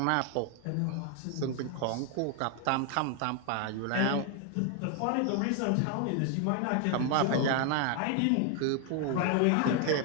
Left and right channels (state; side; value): different; both; correlation 0.00